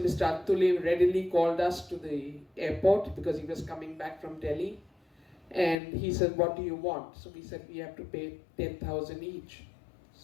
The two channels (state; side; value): drops out; right; at 5.8 s